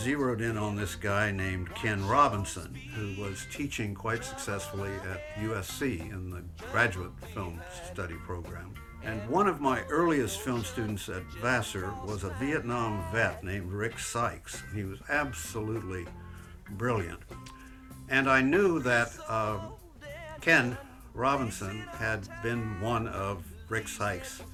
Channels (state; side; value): identical; both; correlation 1.00